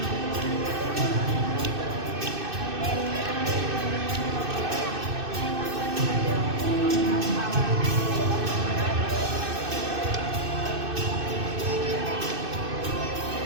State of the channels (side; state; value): left; late; 2.6 ms